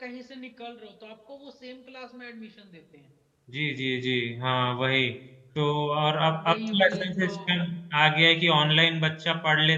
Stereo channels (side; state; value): both; identical; correlation 1.00